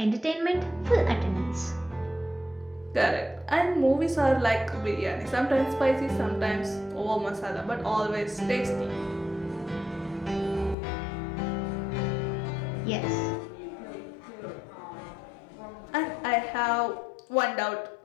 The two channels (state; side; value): drops out; right; at 10.8 s